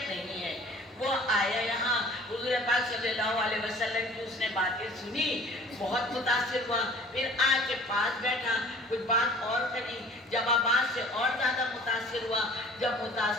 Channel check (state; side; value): normal; both; correlation 0.49